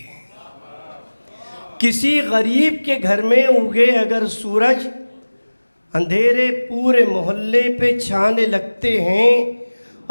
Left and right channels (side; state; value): both; inverted; correlation -1.00